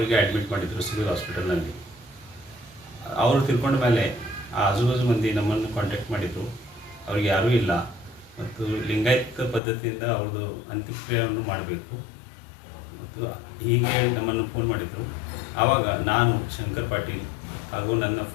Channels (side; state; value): right; drops out; at 9.6 s